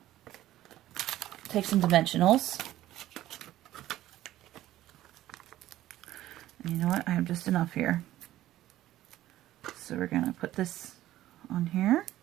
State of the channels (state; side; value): quieter; left; 14.2 dB